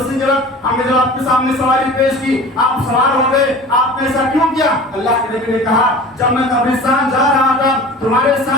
کی جب ہم نے جب آپ کے سامنے سواری پیش کی آپ سوار ہو گئے, آپ نے ایسا کیوں کیا؟ اللہ کے نبی نے کہا جب میں قبرستان جا رہا تھا تمہارے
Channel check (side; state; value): both; normal; correlation 0.40